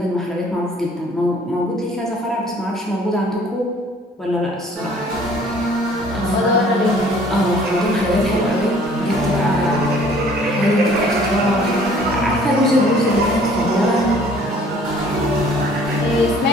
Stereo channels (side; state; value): both; normal; correlation 0.55